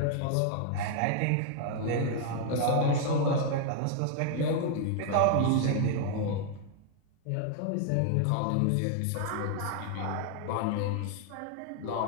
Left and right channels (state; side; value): different; both; correlation 0.00